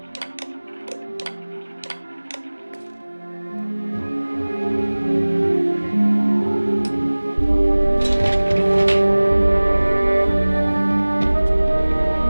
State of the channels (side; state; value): both; inverted; correlation -1.00